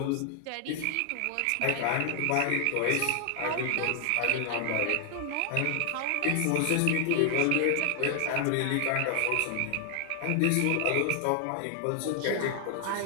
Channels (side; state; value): both; different; correlation 0.00